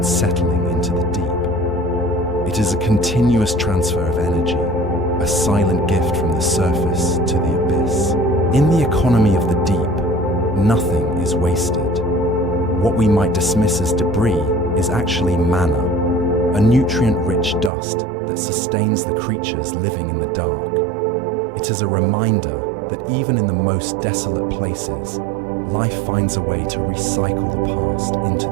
settling into the deep. It is a continuous transfer of energy, a silent gift from the surface to the abyss. In the economy of the deep, nothing is wasted. What we might dismiss as debris is actually manna, a nutrient-rich dust that sustains the creatures living in the dark. It is a reminder that even in the most desolate places, life finds a way to recycle the past into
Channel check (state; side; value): drops out; left; at 17.7 s